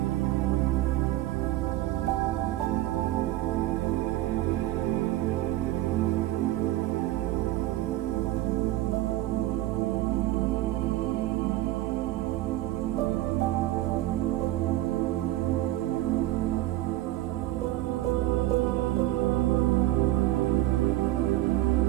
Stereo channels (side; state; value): left; quieter; 15.6 dB